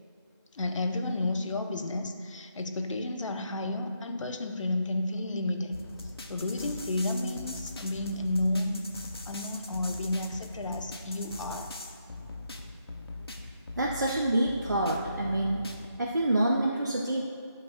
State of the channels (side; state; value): both; inverted; correlation -0.78